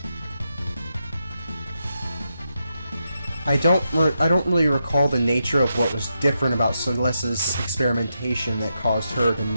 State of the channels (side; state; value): both; inverted; correlation -0.86